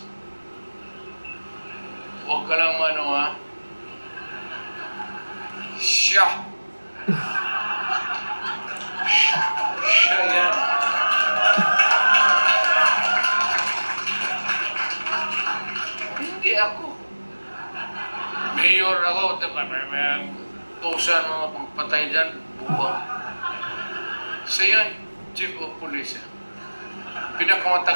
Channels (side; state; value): both; inverted; correlation -1.00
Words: Huwag ka lang ano ha. Siya. Siya yan. Hindi ako. Mayor ako. May tusan mga pagpatay dyan. Buwa. Siya yan, Chief of Police.